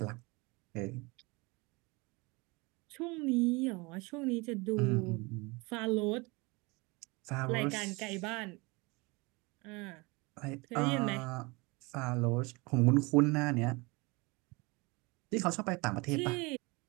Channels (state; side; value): quieter; left; 26.0 dB